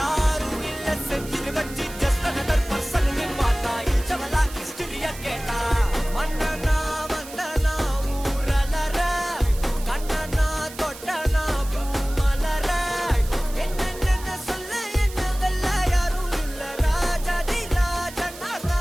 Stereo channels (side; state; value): right; noise; hiss, 15 dB below the sound